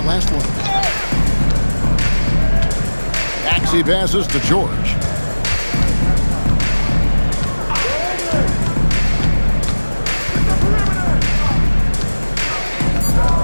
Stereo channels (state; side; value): inverted; both; correlation -1.00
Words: last one. Maxey passes to George.